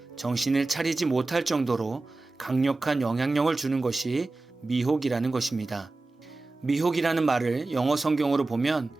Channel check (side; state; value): left; quieter; 3.3 dB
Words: 정신을 차리지 못할 정도로 강력한 영향력을 주는 것이 미혹이라는 것입니다. 미혹이라는 말을 영어 성경으로 보면